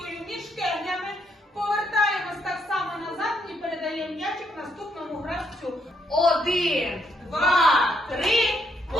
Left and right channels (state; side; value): normal; both; correlation 0.74